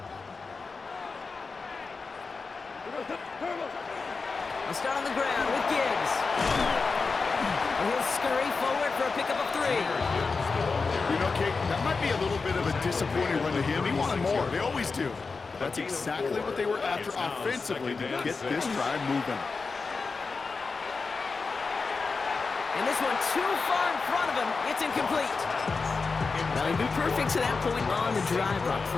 I'll start on the ground with Gibbs. And he'll scurry forward for a pickup of 3. You know, Kate, that might be a little bit of a disappointing run to him. He wanted more. They always do. That's exactly what they were after offensively to get this drive moving. And this one too far in front of him. It's incomplete. Well, he'd been perfect to that point on the drive, Brock.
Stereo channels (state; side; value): quieter; right; 4.4 dB